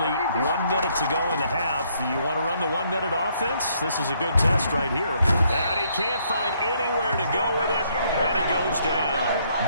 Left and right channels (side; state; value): both; inverted; correlation -0.69